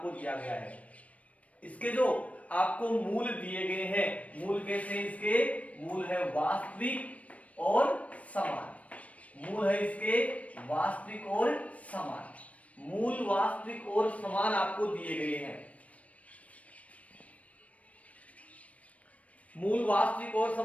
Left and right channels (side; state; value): right; late; 0.066 ms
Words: दिया गया है। इसके जो आपको मूल दिए गए हैं, मूल कैसे हैं इसके? मूल है वास्तविक और समान। मूल है इसके वास्तविक और समान। मूल वास्तविक और समान आपको दिए गए हैं। मूल वास्तविक और